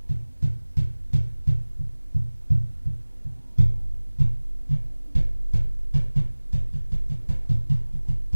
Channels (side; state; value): both; inverted; correlation -1.00